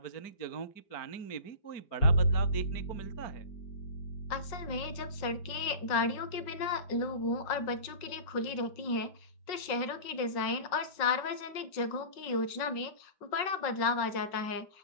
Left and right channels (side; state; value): right; late; 5.4 ms